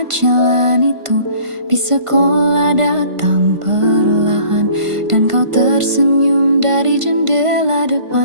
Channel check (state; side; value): late; left; 1.5 ms